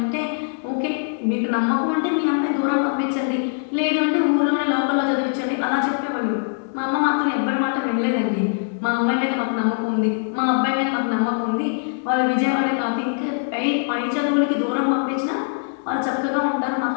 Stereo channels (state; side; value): silent; right; digital silence